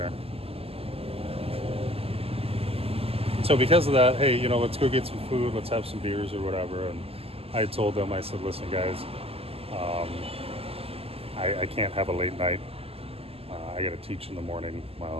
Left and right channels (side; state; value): left; late; 0.28 ms